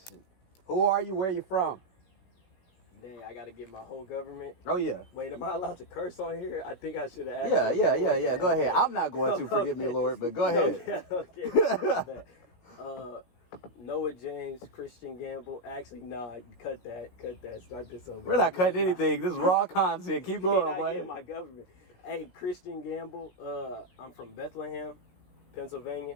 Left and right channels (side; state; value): right; late; 17 ms